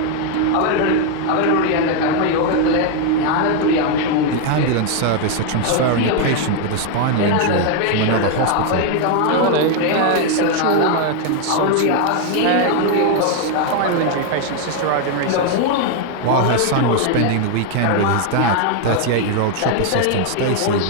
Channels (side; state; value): both; different; correlation 0.01